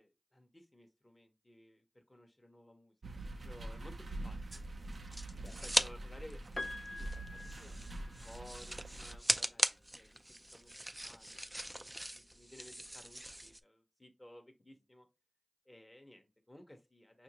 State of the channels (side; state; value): both; normal; correlation 0.98